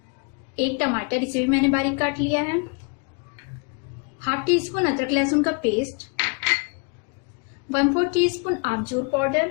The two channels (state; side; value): quieter; right; 35.0 dB